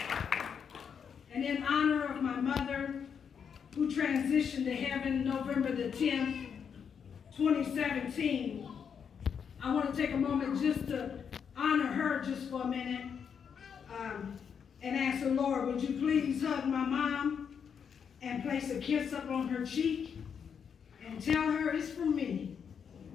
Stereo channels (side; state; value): right; quieter; 7.1 dB